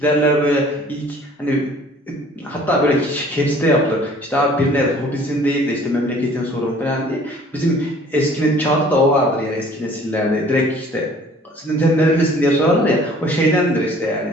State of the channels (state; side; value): normal; both; correlation 0.53